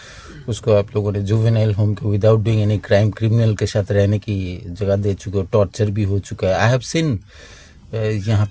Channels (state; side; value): identical; both; correlation 1.00